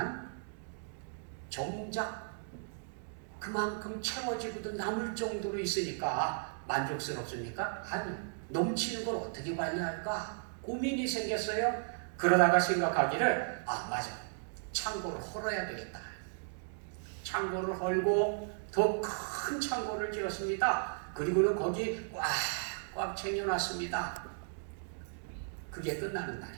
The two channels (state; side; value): silent; left; digital silence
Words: 정작 그만큼 채워지고도 남을 정도로 있으니까 만족스럽습니까? 아니, 넘치는 걸 어떻게 관리할까? 고민이 생겼어요. 그러다가 생각하기를 맞아, 창고를 헐어야 되겠다. 창고를 헐고 더 큰 창고를 지었습니다. 그리고는 거기 꽉 챙겨놨습니다. 그게 끝나는